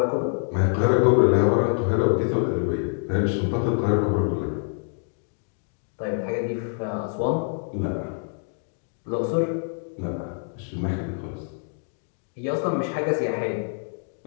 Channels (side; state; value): right; silent; 61 dB below the other